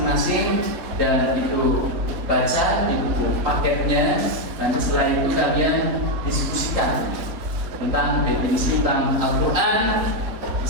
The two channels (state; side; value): late; left; 3.9 ms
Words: dan itu baca di buku paketnya. Nanti setelah itu kalian diskusikan tentang definisi tentang Al-Quran,